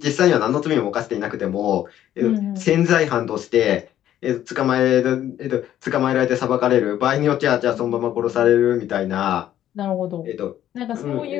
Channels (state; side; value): quieter; right; 11.7 dB